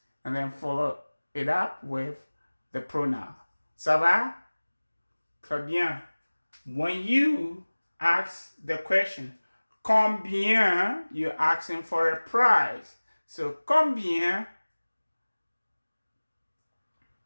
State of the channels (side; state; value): both; inverted; correlation -1.00